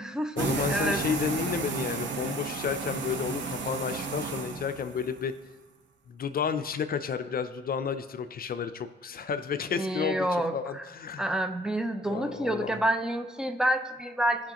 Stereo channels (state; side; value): normal; both; correlation 0.53